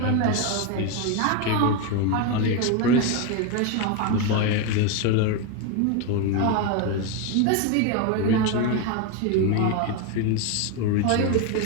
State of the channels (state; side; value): different; both; correlation 0.03